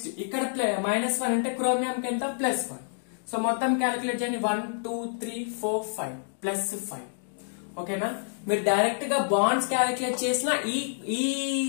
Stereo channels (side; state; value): right; silent; digital silence